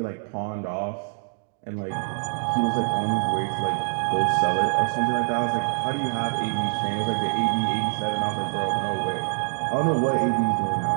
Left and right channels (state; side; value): silent; left; 55 dB below the other